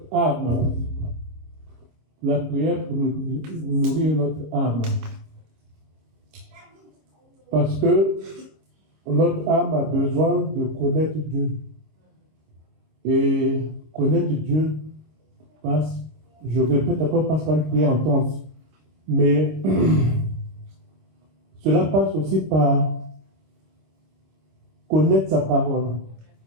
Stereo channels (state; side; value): late; left; 26 ms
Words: âme. La prière pour nourrir notre âme. Parce que notre âme a besoin de connaître Dieu. Et connaître Dieu passe, je répète encore, passe par une prière intense. Mais cela passe aussi par connaître sa parole.